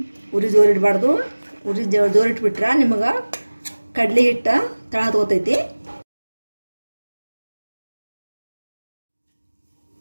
ಉರಿ ಜೋರು ಇಡಬಾರ್ದು. ಉರಿ ಜೋರು ಇಟ್ಬಿಟ್ರೆ ನಿಮಗೆ ಕಡಲೆ ಹಿಟ್ಟು ತಳ ಹತ್ಕೋತೈತಿ.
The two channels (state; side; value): inverted; both; correlation -1.00